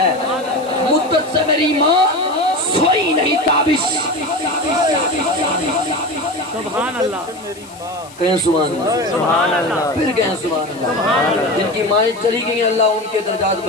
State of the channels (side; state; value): left; noise; hiss, 22 dB below the sound